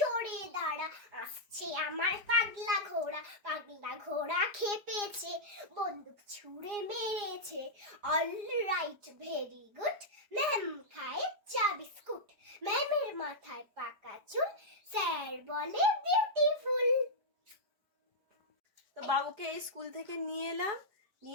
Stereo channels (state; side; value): late; left; 4.9 ms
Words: দাঁড়া, আসছে আমার পাগলা ঘোড়া খেপেছে, বন্দুক ছুঁড়ে মেরেছে, all right very good, ma'am খায় চা বিস্কুট, ম্যামের মাথায় পাকা চুল, স্যার বলে বিউটিফুল। তো বাবুকে এই স্কুল থেকে নিয়ে এলাম,